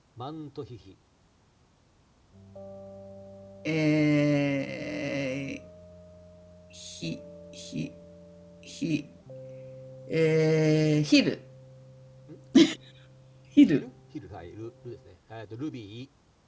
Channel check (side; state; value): both; identical; correlation 1.00